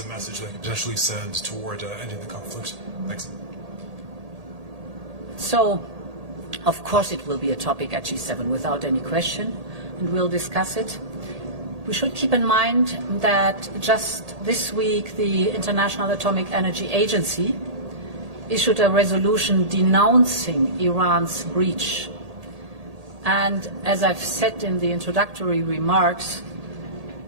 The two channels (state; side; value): late; left; 1.8 ms